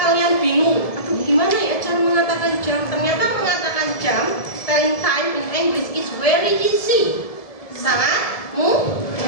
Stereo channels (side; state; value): right; late; 1.7 ms